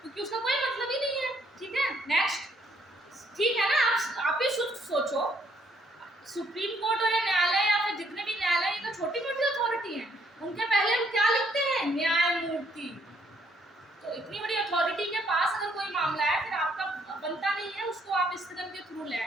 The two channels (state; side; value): normal; both; correlation 0.68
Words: क्योंकि उसका कोई मतलब ही नहीं है, ठीक है। नेक्स्ट, ठीक है ना। आप ही सोचो, सुप्रीम कोर्ट और न्यायालय या फिर जितने भी न्यायालय, ये तो छोटी मोटी अथॉरिटी हैं, उनके पहले हम क्या लिखते हैं, न्यायमूर्ति। तो इतनी बड़ी अथॉरिटी के पास अगर कोई मामला है, फिर आपका बनता नहीं है उसको आप स्थगन के थ्रू ले